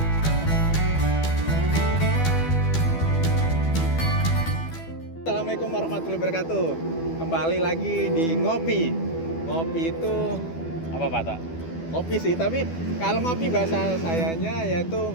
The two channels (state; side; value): late; right; 12 ms